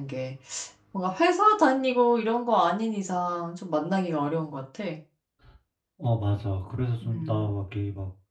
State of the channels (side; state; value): both; identical; correlation 1.00